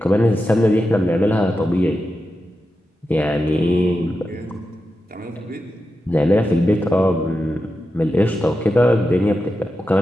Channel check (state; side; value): normal; both; correlation 0.90